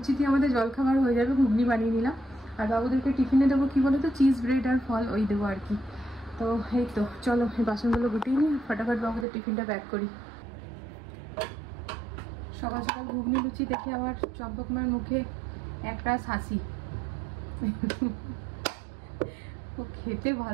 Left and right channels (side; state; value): left; drops out; at 9.2 s